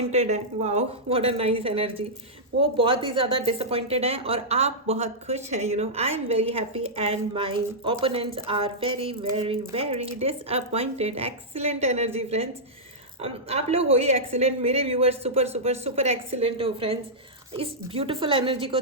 हैं। Wow, what a nice energy. वो बहुत ही ज़्यादा डिसअपॉइंटेड हैं और आप बहुत खुश हैं। I am very happy and my opponents are very very very disappointed. Excellent energy friends, आप लोग हो ही एक्सीलेंट, मेरे viewers super super super excellent हो फ्रेंड्स। इस ब्यूटीफुल एनर्जी को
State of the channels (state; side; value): normal; both; correlation -0.10